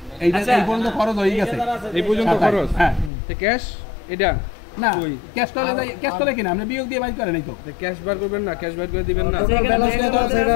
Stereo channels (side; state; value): right; drops out; at 3.1 s